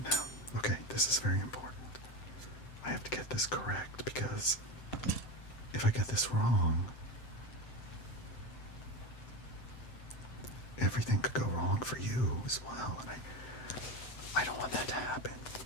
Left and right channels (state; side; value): late; right; 7.6 ms